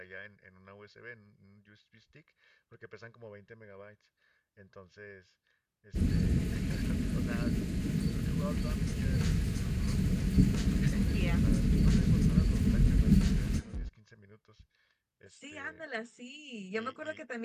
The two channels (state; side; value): identical; both; correlation 1.00